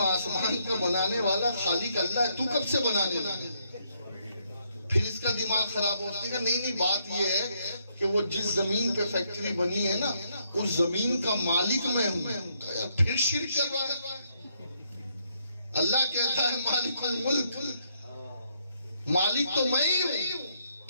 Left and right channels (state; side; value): inverted; both; correlation -0.74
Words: آسمان کا بنانے والا خالق اللہ ہے، تو کب سے بنانے لگا؟ پھر اس کا دماغ خراب ہوتا ہے کہ نہیں بات یہ ہے کہ وہ جس زمین پہ فیکٹری بنی ہے نا اس زمین کا مالک میں ہوں، پھر شرک کر رہا ہے۔ اللہ کہتا ہے مالک الملک، مالک تو میں ہی ہوں،